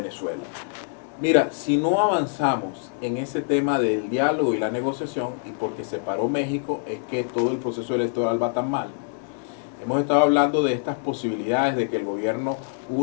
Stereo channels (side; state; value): right; silent; digital silence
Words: Mira, si no avanzamos en ese tema del diálogo y la negociación, y porque se paró México, es que todo el proceso electoral va tan mal. Hemos estado hablando de estas posibilidades de que el gobierno